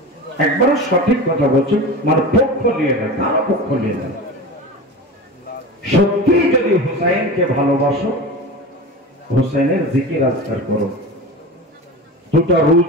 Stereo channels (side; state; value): both; normal; correlation 0.30